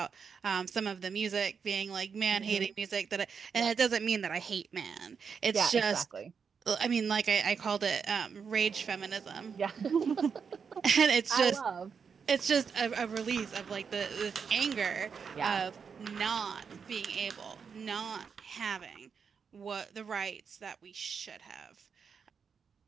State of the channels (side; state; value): left; quieter; 6.2 dB